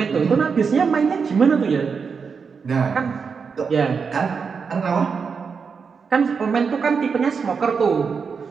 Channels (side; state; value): left; quieter; 5.7 dB